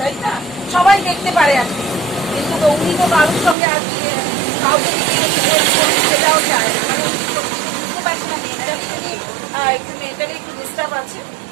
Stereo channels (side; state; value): left; drops out; at 3.6 s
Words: না? সবাই দেখতে পারে আর কি, কিন্তু তো উনি তো কারোর সঙ্গে আর কি কাউকে দিয়ে help করুন সেটাও চায় না। মানে উনি তো বুঝতে পারছে না মেন্টালি, উনি একটু মেন্টালি একটু ডিস্টার্ব আছে।